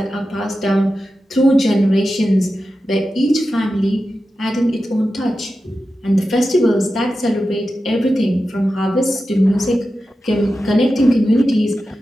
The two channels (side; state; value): both; normal; correlation 0.92